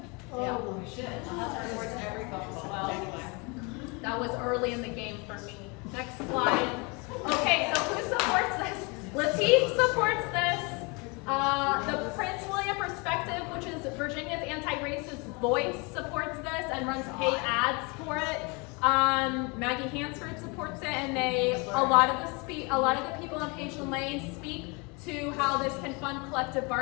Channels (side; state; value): right; quieter; 29.8 dB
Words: Oh, my. Supports every phone call. Well, Anyway. that was early in the game for me. Next slide. Okay, so who supports this? Lateef supports this. The Prince William Perspective, which is Virginia's anti-racist voice, supports this and runs paid ads for it. Maggie Hansford supports it, and a lot of the people on Pageland Lane speak to how this can fund collective